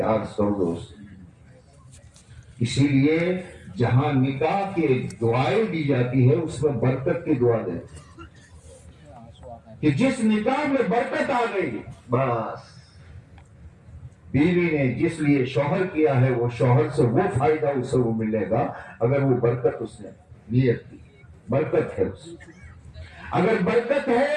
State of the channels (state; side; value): identical; both; correlation 1.00